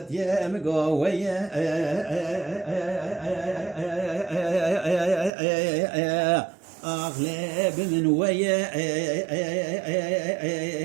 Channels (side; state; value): left; drops out; at 5.3 s